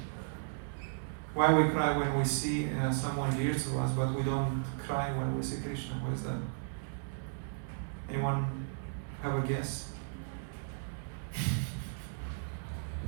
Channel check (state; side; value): silent; left; 54 dB below the other